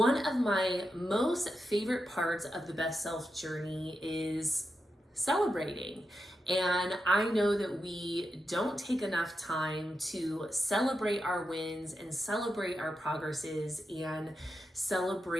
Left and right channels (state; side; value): normal; both; correlation 0.88